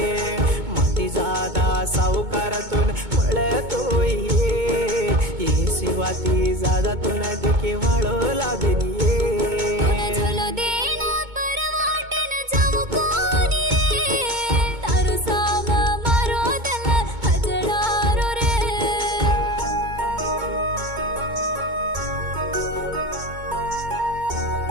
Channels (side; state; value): left; late; 2.2 ms